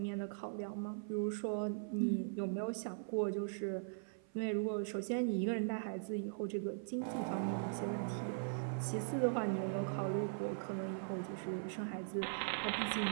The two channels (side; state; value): left; silent; 51 dB below the other